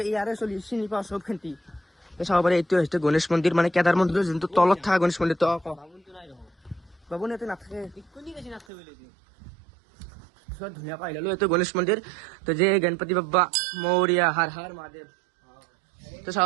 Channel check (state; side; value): drops out; left; at 8.7 s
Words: ইয়াৰে চিনি পাওঁ চব খেন্তি চাব পাৰে। এইটো হৈছে গণেশ মন্দিৰ, মানে কেদাৰ মন্দিৰৰ যোনটো তলত থকা গণেশ মন্দিৰটো। বাবুন ইয়াতে নাথাকে, ধুনীয়াকৈ আহিলোঁ। এইটো গণেশ মন্দিৰ। তো যে গণপতি বাপ্পা মৌৰ্যা, হৰ হৰ মহাদেৱ। তো চাব